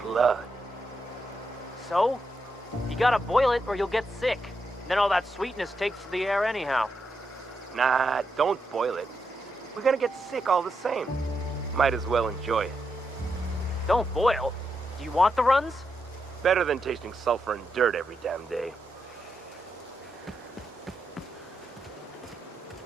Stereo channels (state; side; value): normal; both; correlation 0.84